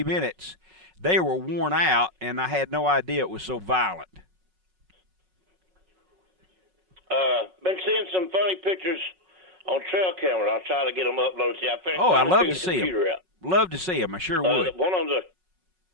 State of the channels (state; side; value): late; left; 5.4 ms